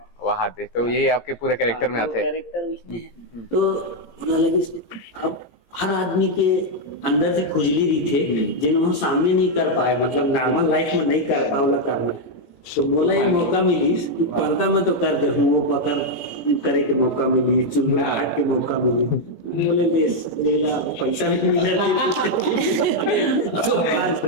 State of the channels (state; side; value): late; right; 17 ms